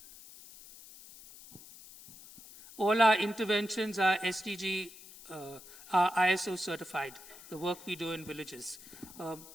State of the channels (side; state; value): left; noise; hiss, 18 dB below the sound